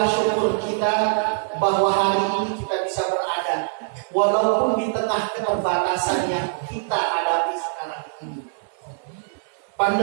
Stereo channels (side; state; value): left; silent; 63 dB below the other